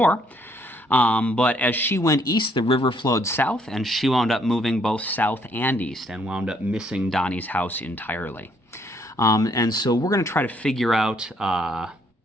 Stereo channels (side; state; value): both; normal; correlation 0.68